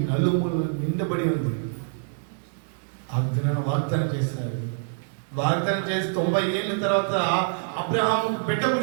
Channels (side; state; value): left; silent; digital silence